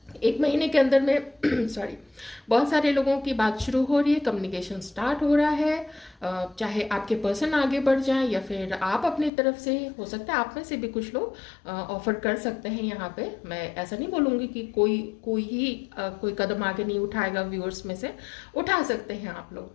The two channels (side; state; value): right; drops out; at 9.3 s